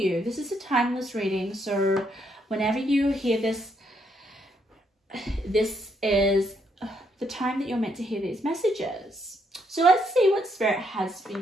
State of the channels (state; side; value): normal; both; correlation 0.74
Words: This is a timeless reading. So whenever you hear this, this is the time that you're meant to hear these messages. So let's see what Spirit has for